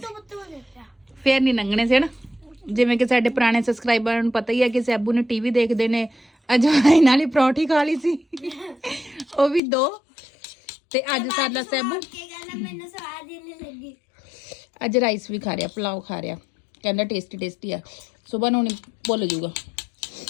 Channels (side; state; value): right; drops out; at 9.6 s